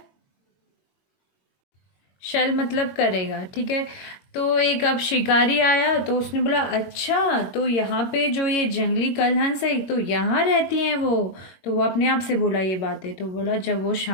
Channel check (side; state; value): right; late; 22 ms